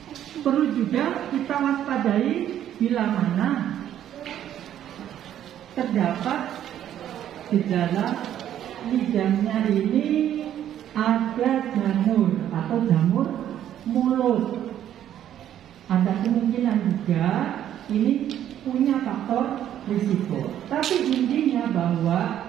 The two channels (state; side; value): quieter; left; 10.9 dB